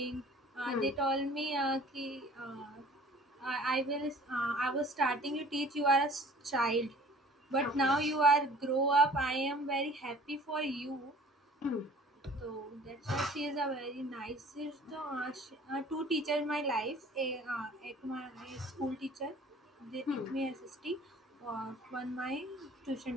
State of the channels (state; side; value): normal; both; correlation 0.49